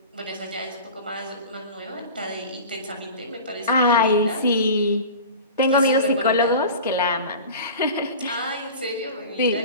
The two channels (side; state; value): both; inverted; correlation -0.36